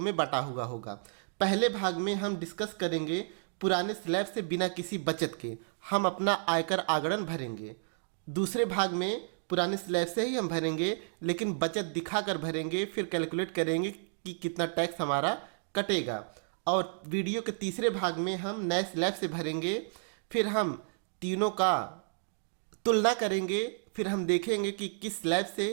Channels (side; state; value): left; silent; digital silence